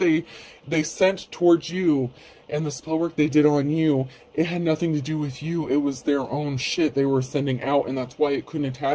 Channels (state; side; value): identical; both; correlation 1.00